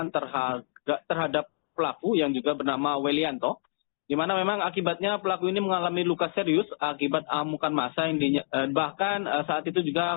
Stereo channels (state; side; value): silent; right; digital silence